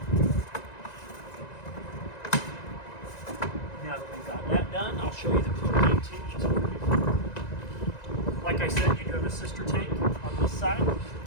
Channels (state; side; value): late; right; 1.9 ms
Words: Now that we've got that done, I'll show you the propane tanks over here. Like I said, you do have a sister tank on this side,